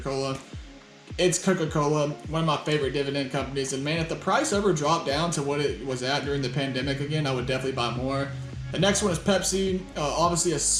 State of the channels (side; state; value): both; identical; correlation 1.00